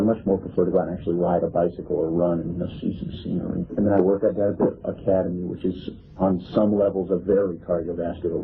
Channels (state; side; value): identical; both; correlation 1.00